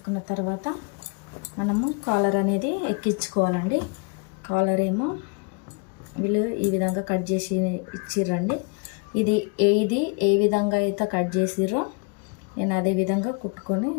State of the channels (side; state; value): right; quieter; 33.4 dB